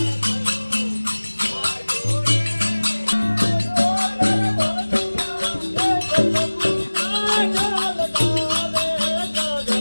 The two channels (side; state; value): both; inverted; correlation -1.00